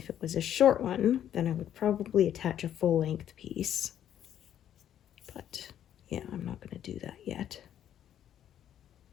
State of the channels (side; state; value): right; quieter; 10.4 dB